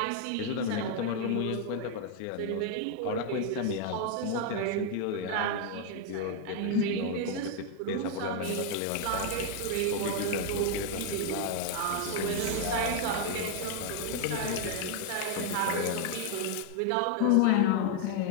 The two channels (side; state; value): both; different; correlation 0.00